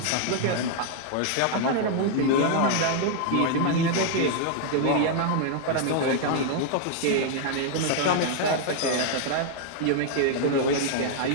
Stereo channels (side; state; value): both; different; correlation 0.00